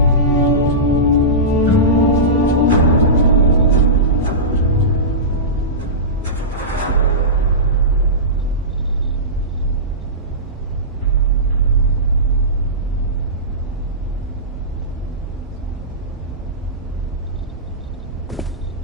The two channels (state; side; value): normal; both; correlation -0.19